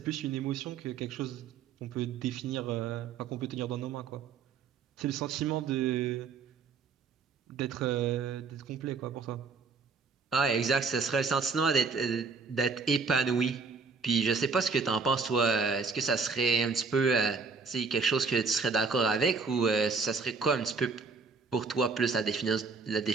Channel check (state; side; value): quieter; left; 4.8 dB